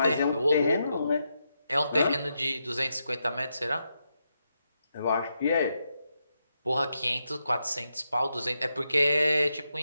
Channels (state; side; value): inverted; both; correlation -0.84